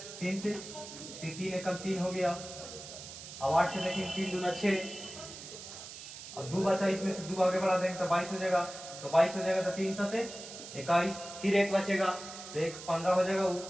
3 से 3 एकम 3 हो गया। अब 8 के देखेंगे, 3 दूना 6, अब 2 बचा, इसमें से 2 आगे बढ़ा देंगे तो 22 हो जाएगा, तो 22 हो जाएगा तो 3 सते 21, फिर एक बचेगा तो एक 15 हो जाएगा,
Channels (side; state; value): right; noise; hiss, 12 dB below the sound